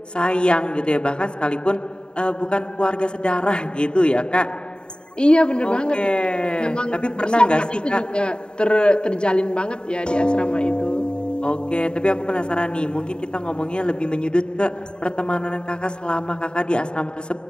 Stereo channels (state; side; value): late; right; 0.050 ms